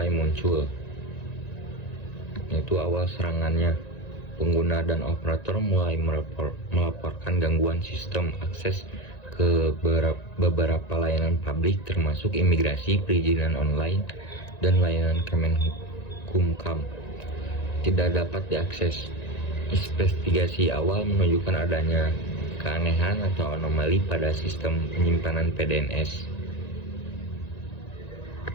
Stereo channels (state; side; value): late; right; 1.9 ms